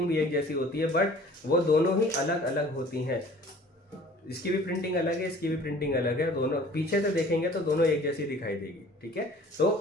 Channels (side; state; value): both; normal; correlation 0.49